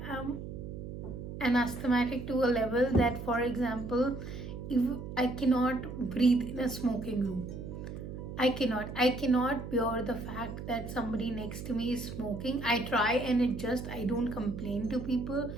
am an asthmatic to a level that, for example, if I cannot breathe in a smoking room, I cannot bear the fact that somebody next to me is smoking. I try and adjust. I don't complain to people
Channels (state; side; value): noise; right; hum, 9 dB below the sound